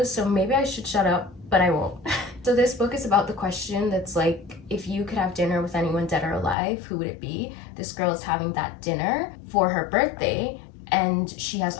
so maybe I should shut up, but I won't. So this book is about the question that's like, if you could have dinner with anyone dead or alive, who would it be? This girl is having that dinner for her birthday, and she has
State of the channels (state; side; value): drops out; right; at 6.6 s